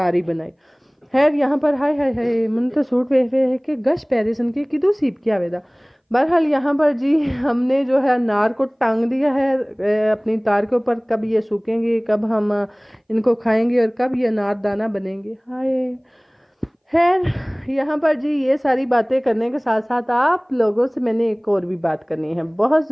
बनाई। खैर यहाँ पर हाय हाय हाय मन तो सूट वे है कि गश पैरिसन के किदू सीप किया वेदा। बहरहाल यहाँ पर जी हमने जो है अनार को टांग दिया है अपनी तार के ऊपर, कब ये सूखेंगे, कब हम इनको खाएंगे, और कब ये अनार दाना बनेंगे। हाय खैर यहाँ पर जी ये सारी बातें करने के साथ साथ आप लोगों से मैंने एक और भी बात करनी है। बहुत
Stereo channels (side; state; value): both; identical; correlation 1.00